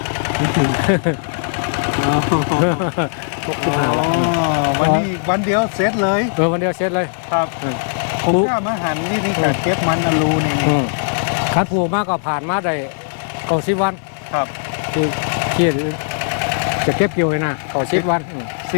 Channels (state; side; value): silent; right; digital silence